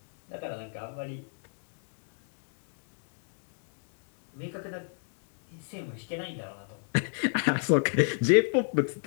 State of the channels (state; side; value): silent; right; digital silence